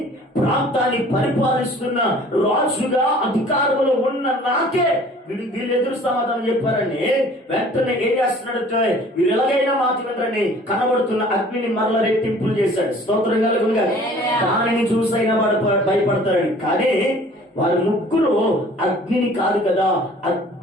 ప్రాంతాన్ని పరిపాలిస్తున్న రాజుగా అధికారంలో ఉన్న నాకే వీళ్ళు ఎదురు సమాధానం చెప్పారని వెంటనే ఏం చేస్తున్నాడంటే, వీరు ఎలాగైనా మాట వినరని కనబడుతున్న అగ్నిని మరల రెట్టింపులు చేశాడు. స్తోత్రం కలుగునుగా. దానిని చూసైనా భయపడతారని. కానీ వారి ముగ్గురు అగ్నిని కాదు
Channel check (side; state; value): both; normal; correlation 0.50